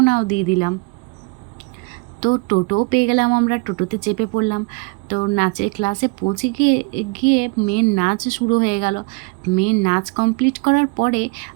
দিয়ে দিলাম। তো টোটোও পেয়ে গেলাম, আমরা টোটোতে চেপে পড়লাম। তো নাচের ক্লাসে পৌঁছে গিয়ে গিয়ে মেয়ের নাচ শুরু হয়ে গেল। মেয়ের নাচ কমপ্লিট করার পরে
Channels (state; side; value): quieter; left; 30.2 dB